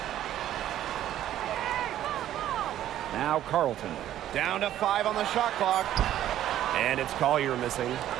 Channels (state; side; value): quieter; left; 12.2 dB